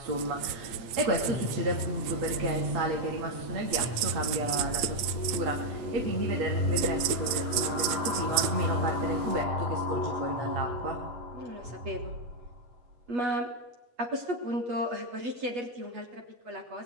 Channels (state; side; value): late; left; 8.7 ms